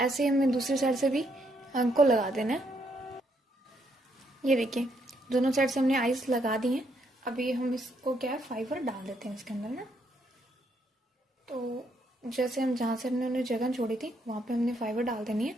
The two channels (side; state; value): both; normal; correlation 0.74